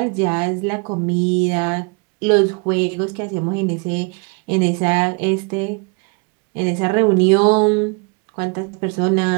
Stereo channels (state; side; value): quieter; left; 34.1 dB